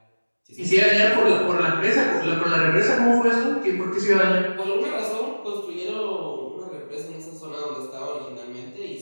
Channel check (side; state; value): both; inverted; correlation -1.00